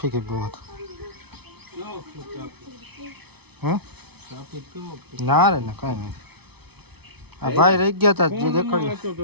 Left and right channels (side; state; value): left; late; 0.99 ms